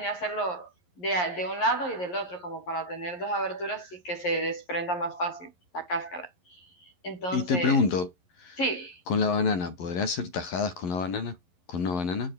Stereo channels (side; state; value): right; late; 11 ms